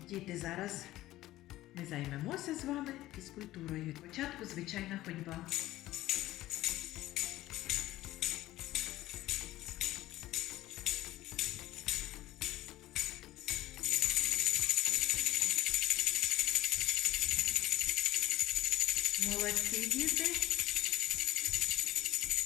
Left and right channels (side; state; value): right; quieter; 15.8 dB